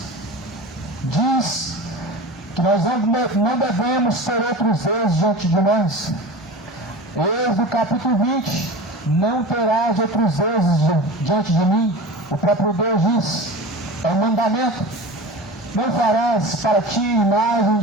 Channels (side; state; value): both; normal; correlation 0.32